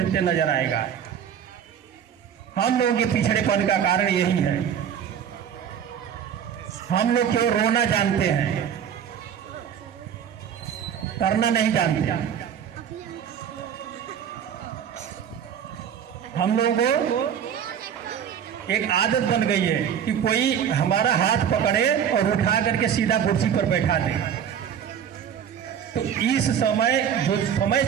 नजर आएगा। हम लोगों के पिछड़ेपन का कारण यही है, हम लोग केवल रोना जानते हैं, करना नहीं जानते। हम लोगों को एक आदत बन गई है कि कोई हमारा हाथ पकड़े और उठा करके सीधा कुर्सी पर बैठा दे। तो इस समय जो समय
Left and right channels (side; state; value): left; quieter; 8.6 dB